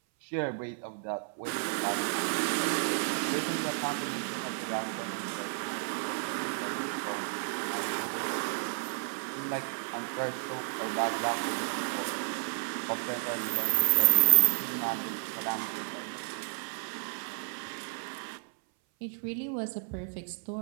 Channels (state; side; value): silent; left; 57 dB below the other